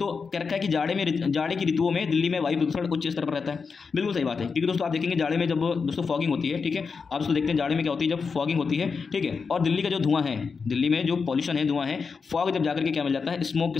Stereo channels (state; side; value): quieter; right; 5.2 dB